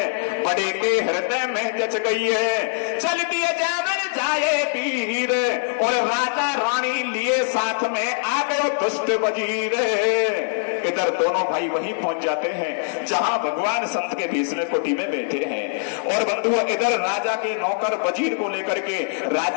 बड़े के हृदय में जच गई है, चल दिए जावन जाए वीर, और राजा रानी लिए साथ में आ गए दुष्ट वजीर। इधर दोनों भाई वहीं पहुंच जाते हैं जहां भगवान संत के भेष में कुटी में बैठे हैं। और बंधुओं इधर राजा के नौकर वजीर को लेकर के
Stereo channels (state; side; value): silent; right; digital silence